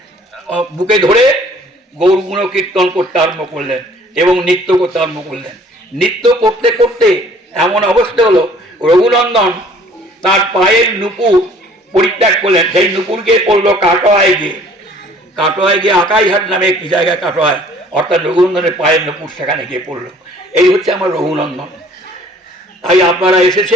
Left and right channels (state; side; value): normal; both; correlation 0.55